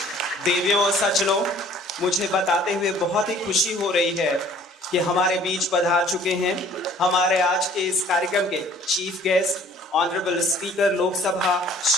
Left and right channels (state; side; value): normal; both; correlation 0.54